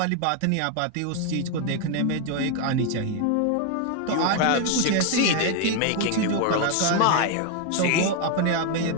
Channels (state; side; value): different; both; correlation 0.01